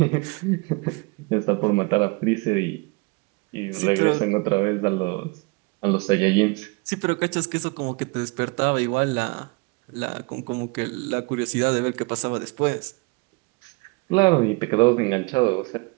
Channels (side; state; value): left; quieter; 28.4 dB